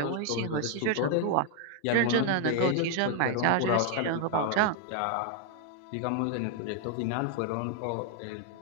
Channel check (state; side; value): different; both; correlation 0.00